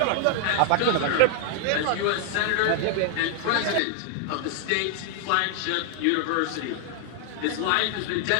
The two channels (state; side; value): different; both; correlation 0.00